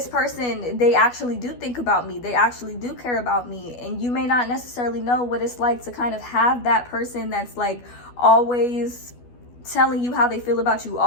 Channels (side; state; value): right; late; 12 ms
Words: person, they actually do think about me. They actually do care about me. And you may not necessarily know what it's like to kind of have that person that's like always telling you how they feel about you,